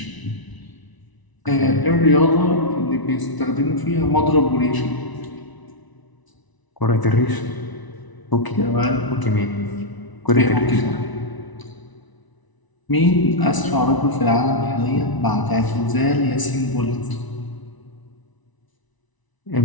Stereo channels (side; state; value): right; late; 1.0 ms